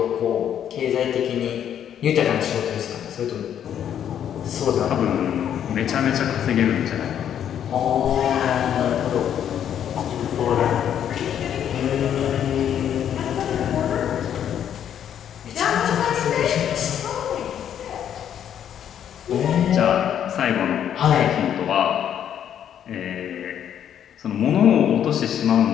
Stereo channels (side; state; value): right; quieter; 9.6 dB